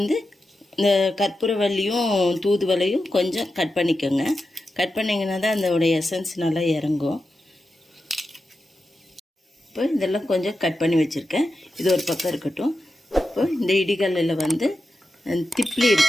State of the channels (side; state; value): both; normal; correlation 0.90